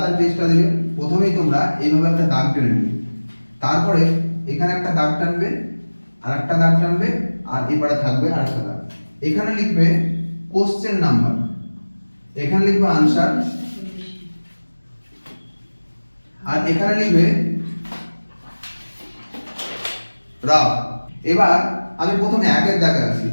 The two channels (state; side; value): inverted; both; correlation -1.00